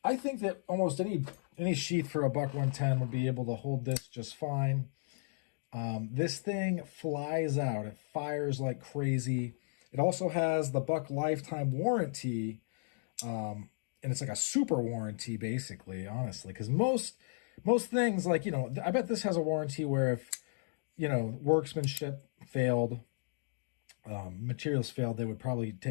I think that almost any sheath for a Buck 110 would be able to hold this just fine. This thing flies out. It fires like crazy. It also has the Buck lifetime warranty, and it's like a super warranty, basically, honestly, because most things, like, I bet this has a warranty where if, workmanship failed, materials failed, they would probably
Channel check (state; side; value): silent; right; digital silence